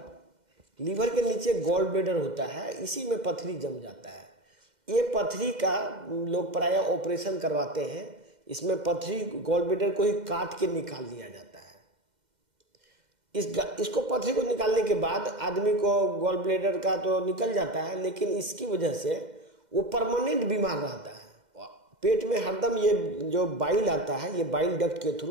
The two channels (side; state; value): left; late; 2.1 ms